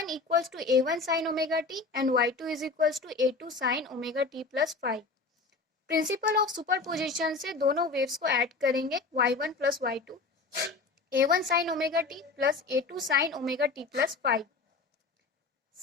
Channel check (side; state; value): right; quieter; 4.0 dB